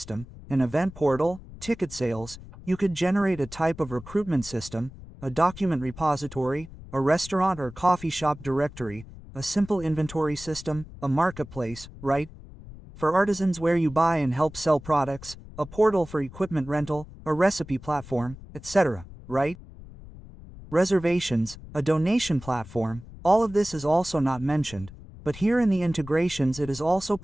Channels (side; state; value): left; noise; rumble, 17 dB below the sound